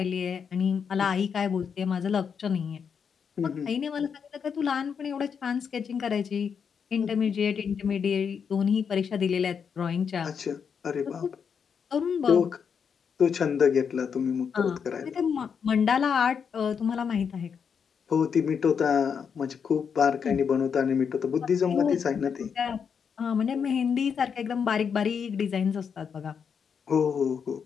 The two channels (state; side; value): quieter; right; 6.8 dB